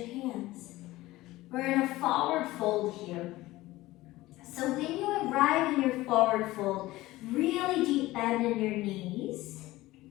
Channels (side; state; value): right; quieter; 17.9 dB